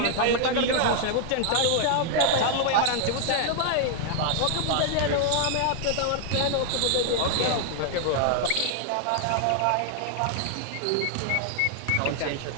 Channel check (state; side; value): different; both; correlation 0.00